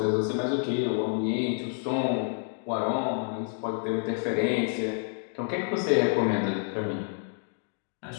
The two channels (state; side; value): silent; right; 59 dB below the other